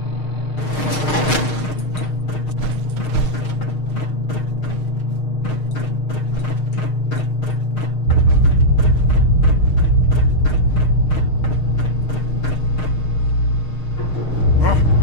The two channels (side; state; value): right; late; 6.5 ms